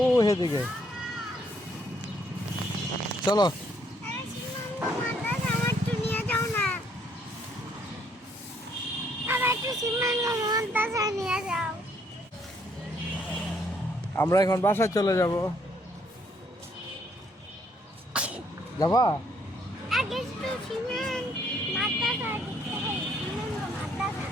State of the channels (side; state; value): both; normal; correlation 0.68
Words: হেদিকে চলো। আমরা এখন বাসায় চলে যাব। যাবা?